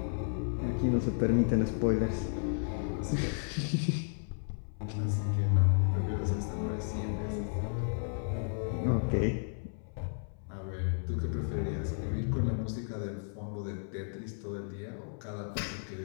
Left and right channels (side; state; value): right; silent; 56 dB below the other